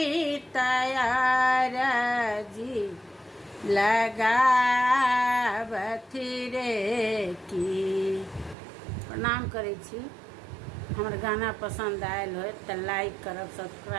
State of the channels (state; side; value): drops out; left; at 8.6 s